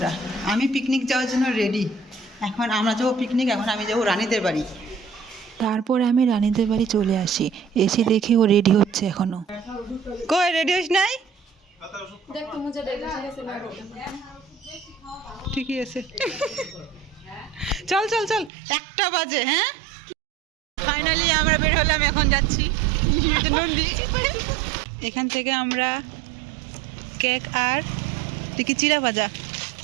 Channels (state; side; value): drops out; left; at 18.5 s